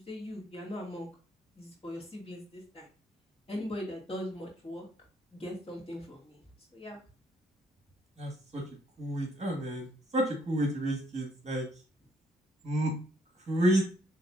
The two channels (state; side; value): normal; both; correlation 0.70